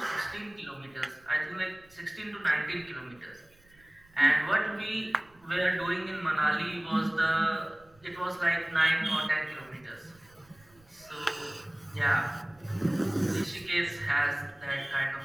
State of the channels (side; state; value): right; noise; rumble, 29 dB below the sound